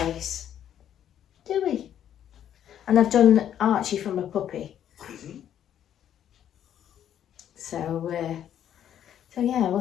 do we? And I've done Archie from a puppy. So yeah,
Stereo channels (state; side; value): quieter; right; 10.2 dB